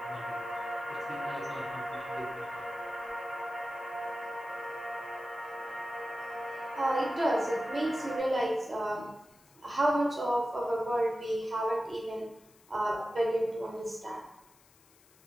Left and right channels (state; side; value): noise; left; hiss, 28 dB below the sound